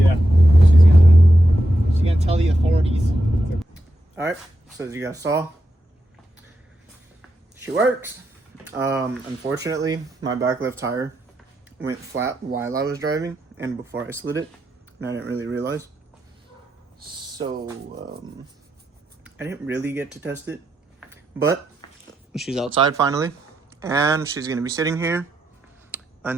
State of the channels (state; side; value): normal; both; correlation 0.85